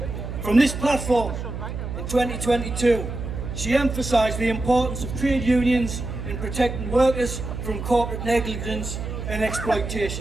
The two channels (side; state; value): right; noise; hum, 6 dB below the sound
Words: From this platform in 2022, she emphasised the importance of trade unions in protecting workers from corporate negligence and